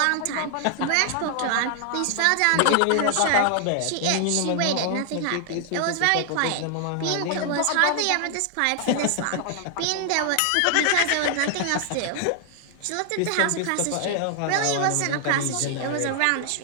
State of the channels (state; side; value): different; both; correlation 0.00